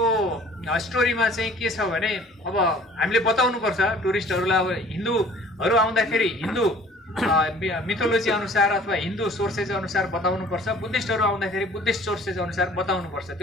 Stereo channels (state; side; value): normal; both; correlation 0.51